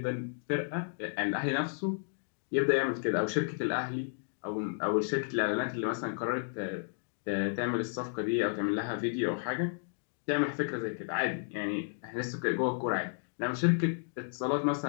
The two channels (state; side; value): silent; right; digital silence